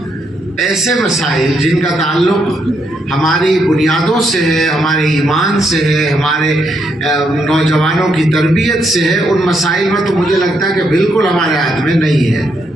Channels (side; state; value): both; normal; correlation 0.77